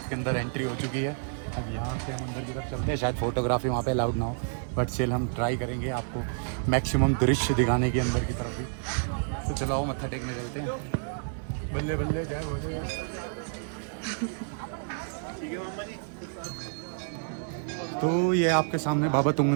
के अंदर एंट्री हो चुकी है। अब यहाँ से हम अंदर की तरफ चलते हैं, शायद फोटोग्राफी वहाँ पे अलाउड ना हो, बट स्टिल हम ट्राई करेंगे आपको मैक्सिमम दृश्य दिखाने की अंदर की तरफ भी। तो चलो आओ मत्था टेकने चलते हैं। बल्ले बल्ले जय भोले। तो ये आपके सामने बाबा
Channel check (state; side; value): silent; left; digital silence